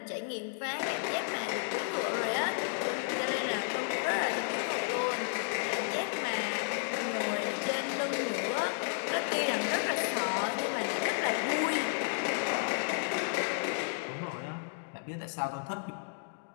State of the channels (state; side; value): silent; right; digital silence